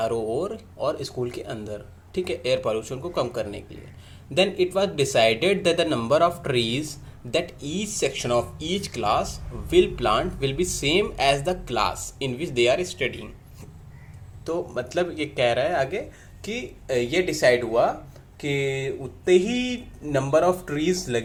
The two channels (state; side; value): identical; both; correlation 1.00